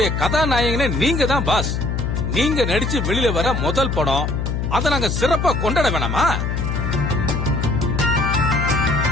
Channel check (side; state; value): left; noise; hum, 1 dB below the sound